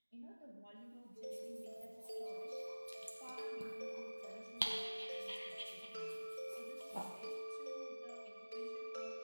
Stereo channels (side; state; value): both; inverted; correlation -1.00